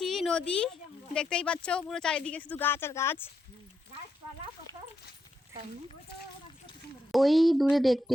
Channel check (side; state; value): both; normal; correlation 0.82